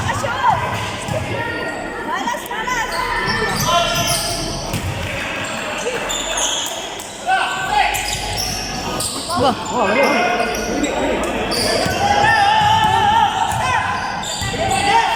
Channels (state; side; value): identical; both; correlation 1.00